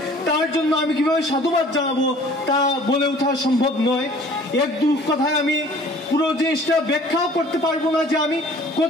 তার জন্য আমি কিভাবে সাধুবাদ জানাবো তা বলে ওঠা সম্ভব নয়। এক দু কথায় আমি পুরো জিনিসটা ব্যাখ্যাও করতে পারবো না যে আমি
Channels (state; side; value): normal; both; correlation 0.51